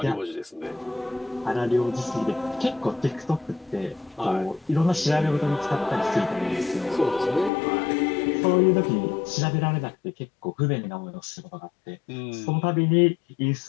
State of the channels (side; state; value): right; drops out; at 7.5 s